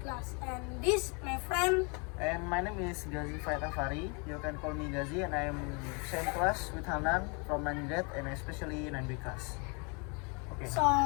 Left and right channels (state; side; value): quieter; right; 33.2 dB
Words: class. And this, my friend. And my name is Gazi Faitafari. You can call me Gazi, and I'm same class with Hanan from 9th grade and especially 9B class. Okay. So,